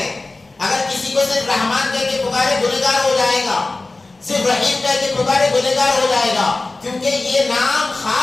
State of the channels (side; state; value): right; quieter; 3.2 dB